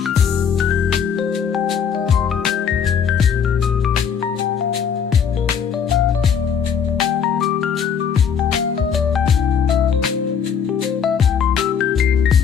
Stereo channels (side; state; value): right; quieter; 7.2 dB